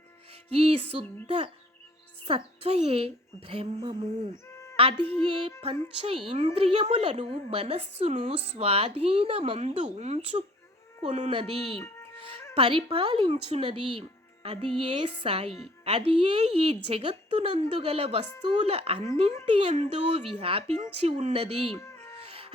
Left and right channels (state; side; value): normal; both; correlation 0.54